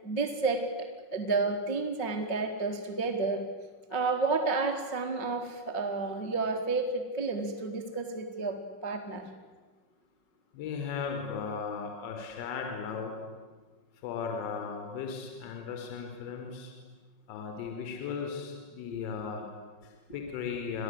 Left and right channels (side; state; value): right; late; 5.5 ms